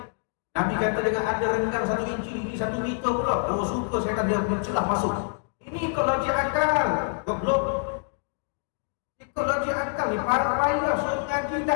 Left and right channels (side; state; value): right; silent; digital silence